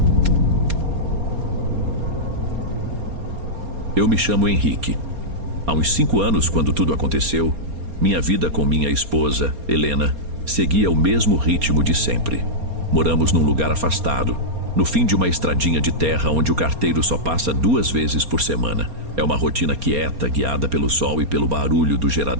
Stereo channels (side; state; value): left; late; 4.3 ms